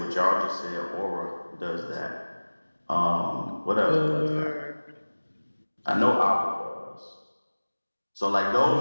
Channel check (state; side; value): inverted; both; correlation -1.00